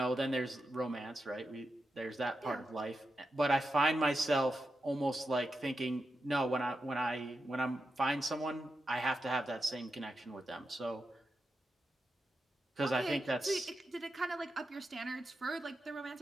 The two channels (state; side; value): normal; both; correlation 0.88